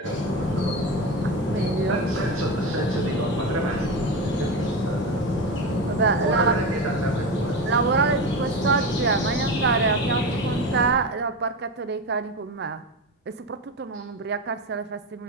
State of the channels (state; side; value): normal; both; correlation 0.22